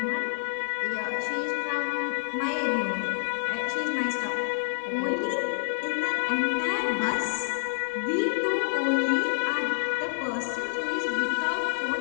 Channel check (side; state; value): right; silent; 60 dB below the other